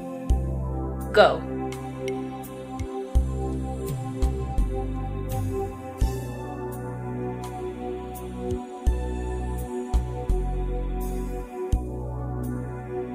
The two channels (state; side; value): identical; both; correlation 1.00